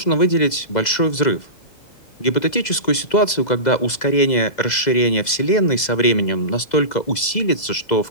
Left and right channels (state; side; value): late; right; 2.0 ms